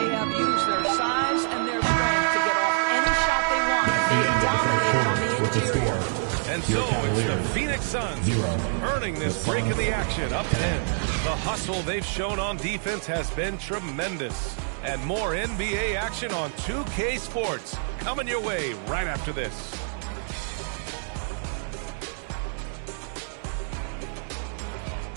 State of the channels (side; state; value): left; silent; 61 dB below the other